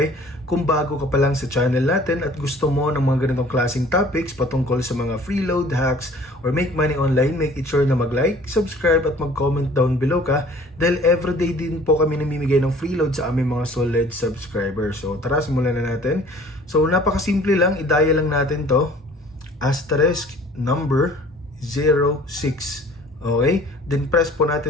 kung bago ka pa lang sa channel natin at gusto mo ng mga ganitong klaseng topics patungkol sa mga freeload hacks or make money online, make it sure na mag-like, subscribe at mag-comment down below ka dahil everyday din po kami namimigay ng freeload sa aming mga solid subscribers. So tara, simulan na natin. So napakasimple lang, i-dial lang natin to, asterisk number 06. Okay? Then press po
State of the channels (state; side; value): normal; both; correlation 0.51